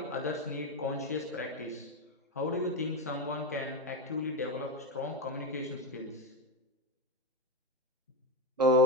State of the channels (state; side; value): normal; both; correlation 0.15